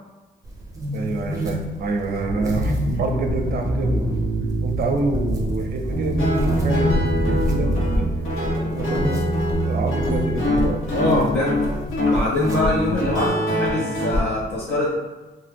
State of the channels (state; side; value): normal; both; correlation 0.63